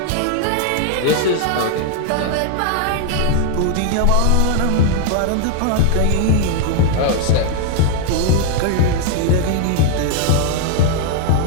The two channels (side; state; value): both; different; correlation 0.00